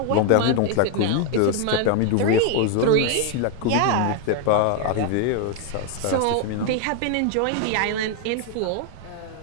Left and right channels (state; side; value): different; both; correlation 0.01